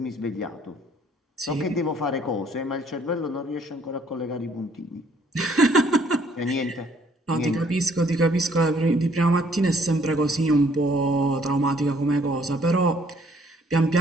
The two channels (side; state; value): both; normal; correlation 0.63